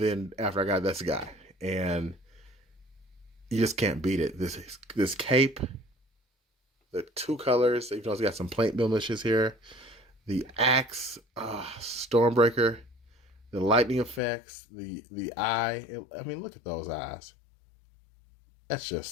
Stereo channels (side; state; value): right; drops out; at 14.2 s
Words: after I got this guy. And you just can't beat it. This cape, the 2 colors, even though it's got some paint blemishes here. The axe, Stormbreaker, The lightning effects, the eye. I mean, look at those eyes. That's